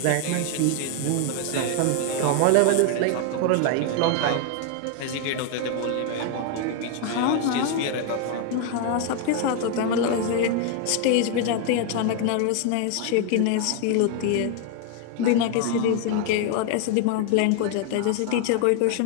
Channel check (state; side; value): different; both; correlation 0.00